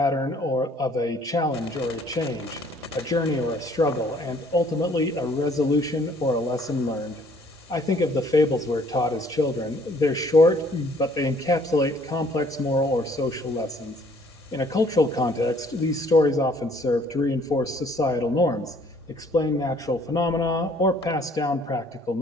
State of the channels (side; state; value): both; normal; correlation 0.60